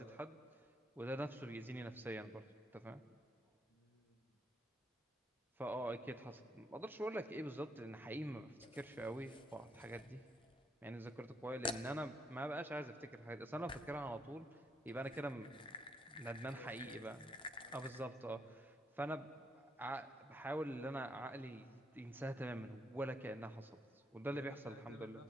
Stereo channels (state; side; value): normal; both; correlation 0.75